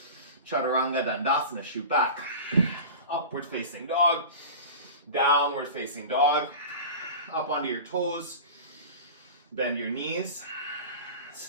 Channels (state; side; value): inverted; both; correlation -0.33